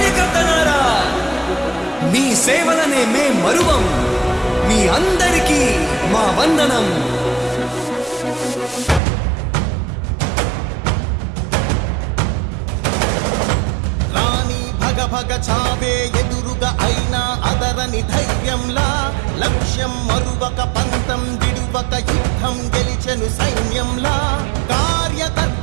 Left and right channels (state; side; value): drops out; left; at 9.0 s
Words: మీ సేవలనే మే మరువం. మీ అందరికీ మా వందనం. భగ చావే ఎదురుగా అయినా అదరని ధైర్యంలా, లక్ష్యం మరువక పంతం విడువక యుద్ధం గెలిచెను సైన్యంలా.